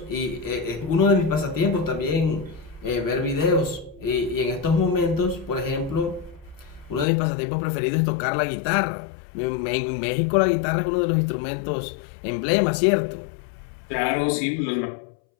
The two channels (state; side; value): drops out; right; at 7.1 s